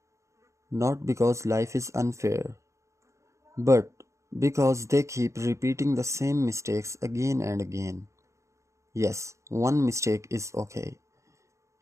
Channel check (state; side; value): late; left; 0.14 ms